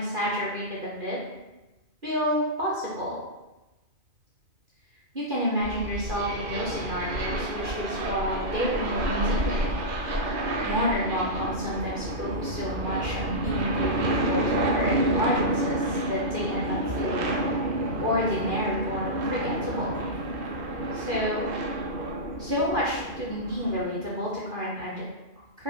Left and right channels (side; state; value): left; late; 2.5 ms